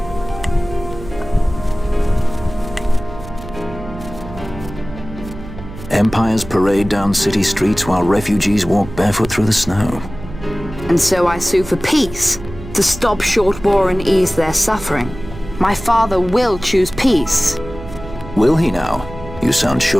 Empires parade down city streets while refugees walk barefoot through the snow. And so I sue for peace, to stop short war and ease their suffering. My father will choose peace. Will he now? You sound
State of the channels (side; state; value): right; noise; hum, 13 dB below the sound